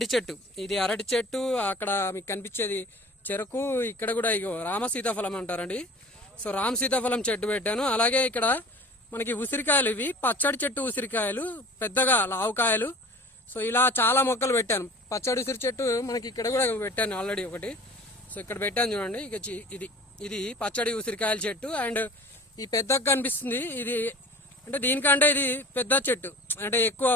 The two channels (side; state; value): both; normal; correlation 0.44